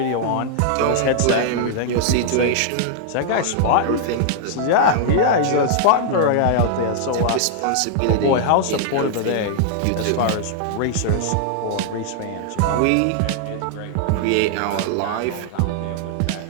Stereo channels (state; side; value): different; both; correlation -0.01